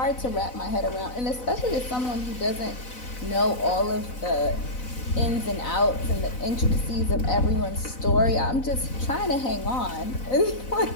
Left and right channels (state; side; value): late; right; 4.0 ms